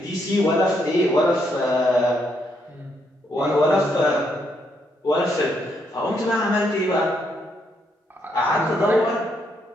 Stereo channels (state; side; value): normal; both; correlation 0.76